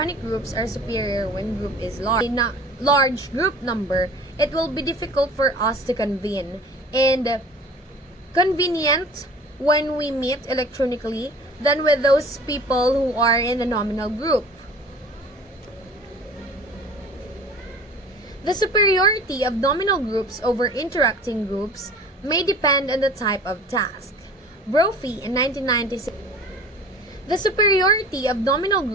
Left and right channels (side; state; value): both; normal; correlation 0.44